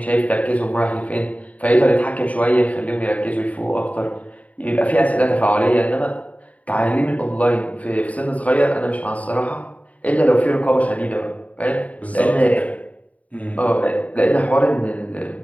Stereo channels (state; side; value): late; right; 0.069 ms